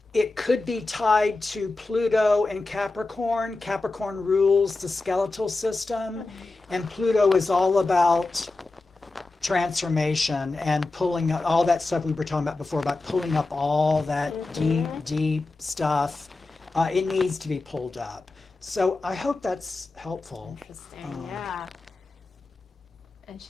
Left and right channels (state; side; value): quieter; right; 3.3 dB